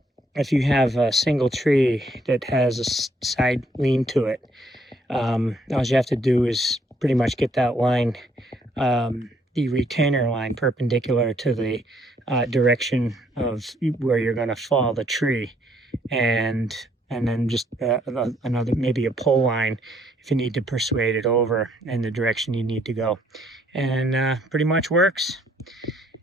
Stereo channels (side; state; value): both; normal; correlation 0.68